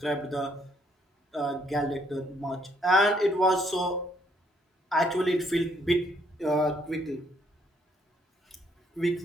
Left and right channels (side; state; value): both; normal; correlation 0.69